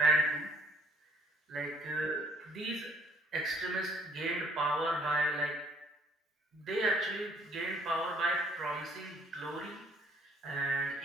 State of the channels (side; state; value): both; normal; correlation 0.61